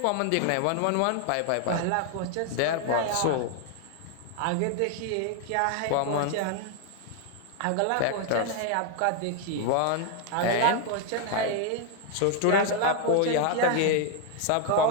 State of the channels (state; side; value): different; both; correlation 0.01